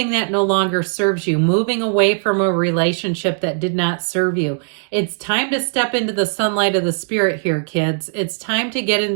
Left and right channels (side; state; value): left; silent; 67 dB below the other